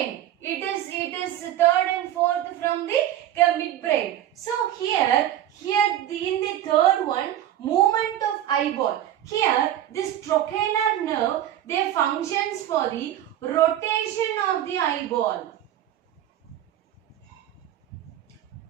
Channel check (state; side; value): quieter; left; 12.0 dB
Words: it is third and fourth from the midbrain. So in the third one, movement of eyeball. Here this trochlear nerve, they functions for the rotation of the eyeball.